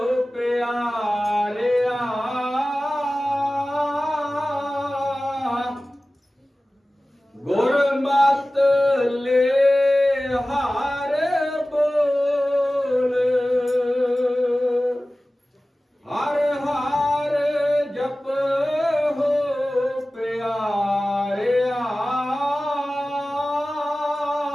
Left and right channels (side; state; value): both; normal; correlation 0.96